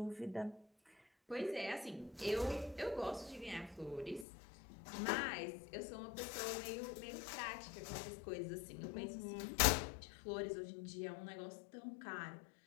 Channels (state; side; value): drops out; right; at 4.2 s